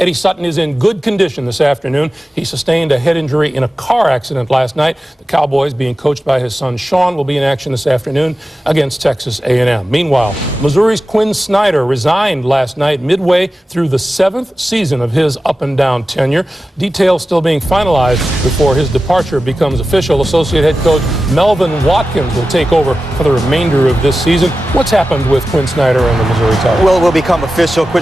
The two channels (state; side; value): normal; both; correlation 0.94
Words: Sutton is in good condition this afternoon. He sustained a head injury in a car accident last night. The Cowboys, being coached by his son Sean, will be in action this afternoon against Texas A&M. Meanwhile, Missouri's Quinn Snyder resigned last night midway through the 7th season of his up-and-down tenure. Details still being finalized before his departure becomes official. Associate head coach Melvin Watkins will take over for the remainder of this season. What's happened with Quinn Snyder and the Missouri Tigers? Well, it will become official.